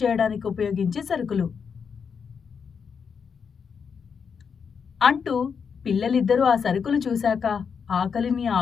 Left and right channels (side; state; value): right; quieter; 6.4 dB